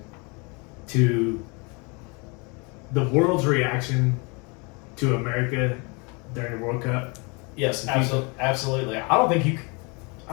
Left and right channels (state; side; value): quieter; right; 30.3 dB